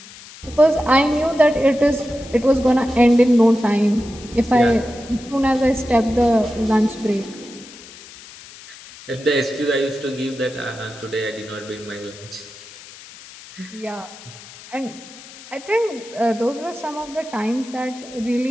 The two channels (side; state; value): left; noise; hiss, 18 dB below the sound